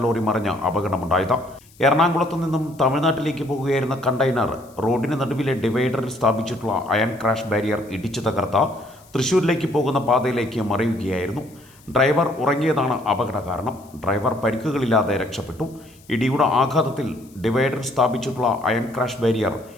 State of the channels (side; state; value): left; noise; hiss, 27 dB below the sound